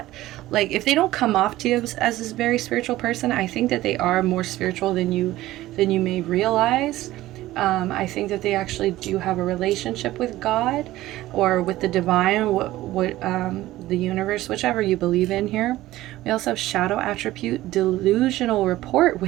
like, if they don't come off to you as this very spiritual person, I think that they are more spiritual than you may realize. I think that they actually do have a relationship with God or with the divine, the universe, whichever you believe in here. We also have shadow attribute, delusional rapport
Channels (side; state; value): left; quieter; 16.1 dB